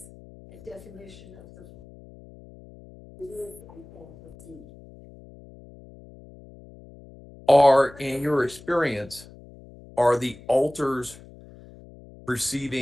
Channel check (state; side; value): noise; left; hum, 21 dB below the sound